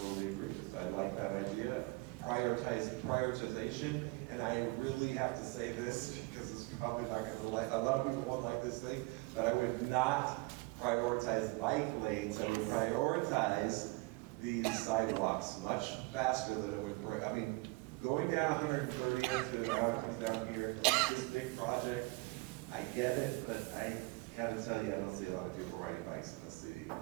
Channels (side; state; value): left; quieter; 25.1 dB